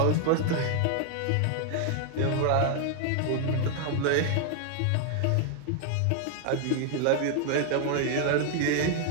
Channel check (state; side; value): different; both; correlation 0.00